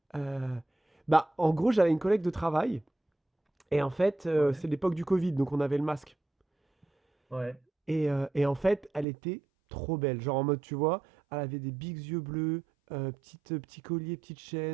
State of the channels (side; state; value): left; drops out; at 9.1 s